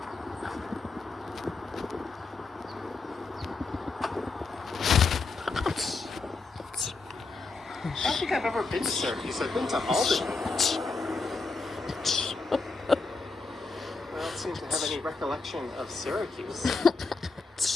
I don't think I've ever been to Syracuse. I've been to Albany. Well, any recollection of Syracuse?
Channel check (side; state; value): right; quieter; 3.9 dB